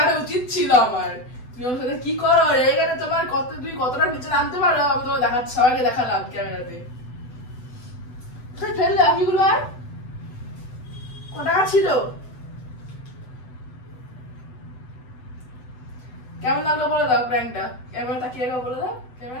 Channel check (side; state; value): right; late; 8.0 ms